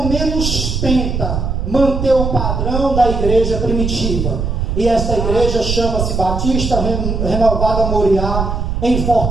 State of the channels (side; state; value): right; noise; rumble, 2 dB below the sound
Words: menos tenta manter o padrão da igreja primitiva. E essa igreja chama-se Batista Renovada Moriá, em